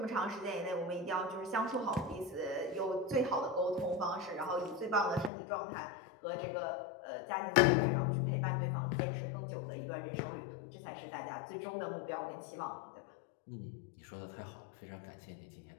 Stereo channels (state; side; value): drops out; right; at 5.3 s